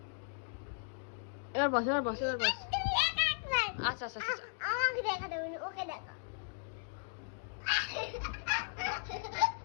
এবার বস, এবার বস, এবার বস। আচ্ছা আচ্ছা আচ্ছা, আমাকে দেখা দেবে, ওকে দেখা।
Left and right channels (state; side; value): silent; right; digital silence